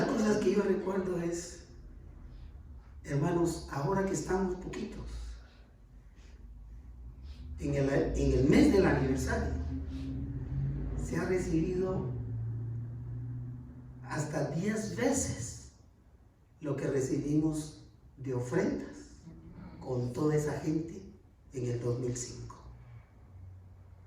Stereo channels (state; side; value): identical; both; correlation 1.00